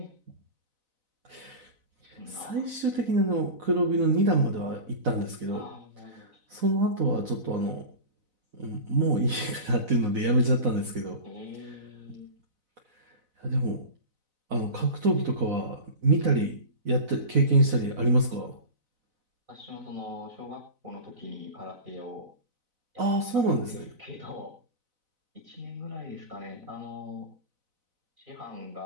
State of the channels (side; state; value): left; late; 4.0 ms